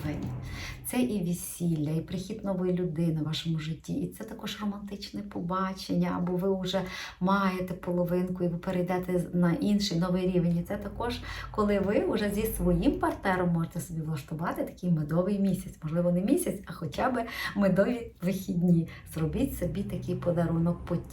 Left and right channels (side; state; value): both; identical; correlation 1.00